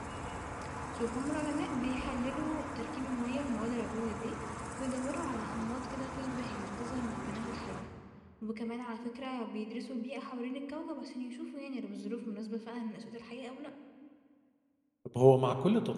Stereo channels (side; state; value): both; identical; correlation 1.00